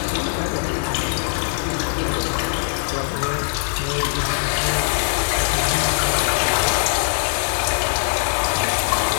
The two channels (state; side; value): silent; right; digital silence